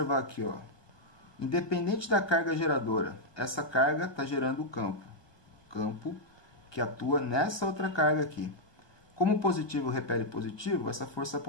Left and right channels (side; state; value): right; late; 1.2 ms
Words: aqui, ó. Independente da carga geradora, essa carga está gerando o campo. Campo que atua nessa outra carga aqui. Como positivo repele positivo, essa força